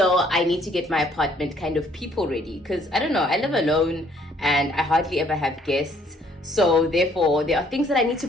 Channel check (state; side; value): normal; both; correlation 0.63